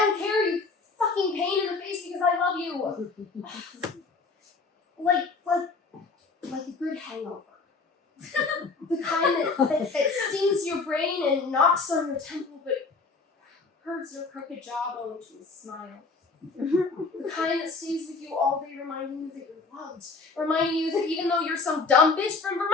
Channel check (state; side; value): quieter; right; 4.3 dB